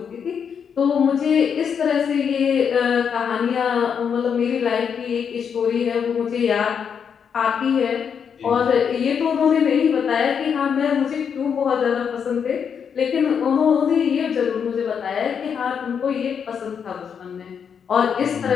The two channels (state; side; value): quieter; right; 7.2 dB